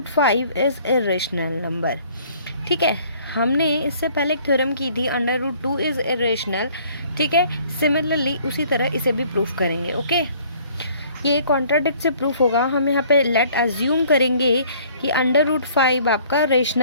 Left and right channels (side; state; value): both; inverted; correlation -0.57